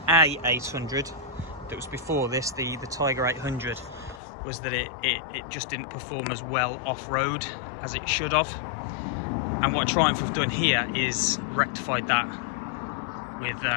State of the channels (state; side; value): drops out; right; at 4.2 s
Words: 800 that was before this, the Tiger 800, was that it just didn't perform as well off-road as it should have. And what Triumph have done here is rectified that with,